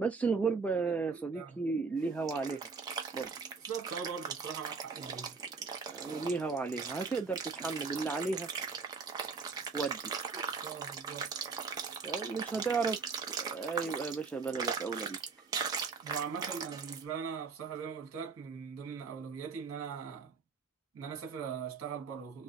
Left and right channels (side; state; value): left; quieter; 4.8 dB